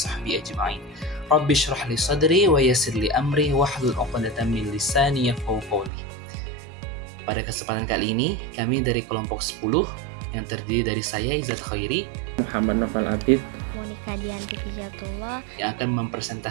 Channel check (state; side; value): drops out; left; at 5.9 s